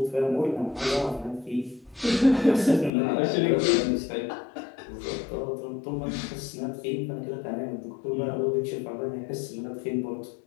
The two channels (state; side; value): drops out; right; at 2.9 s